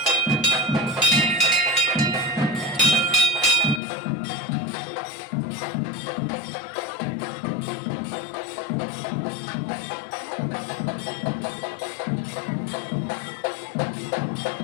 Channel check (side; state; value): right; drops out; at 3.8 s